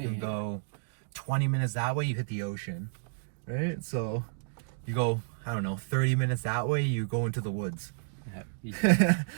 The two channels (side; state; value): left; silent; digital silence